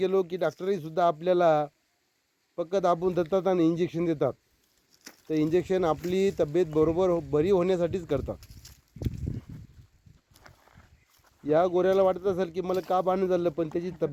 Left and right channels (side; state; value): both; identical; correlation 1.00